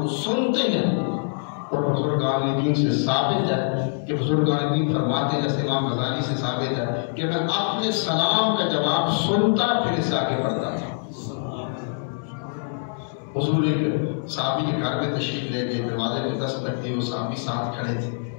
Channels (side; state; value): right; silent; digital silence